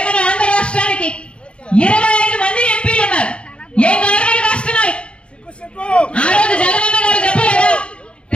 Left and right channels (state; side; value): late; right; 0.058 ms